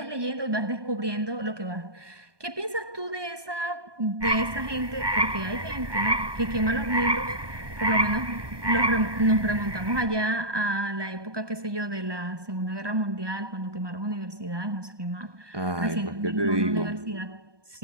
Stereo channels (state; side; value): late; left; 1.2 ms